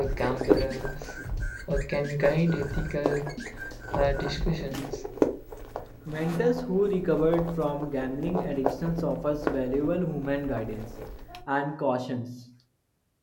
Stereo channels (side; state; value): both; identical; correlation 1.00